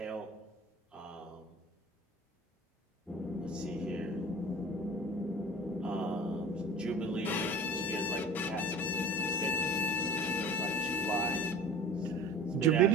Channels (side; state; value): both; normal; correlation 0.41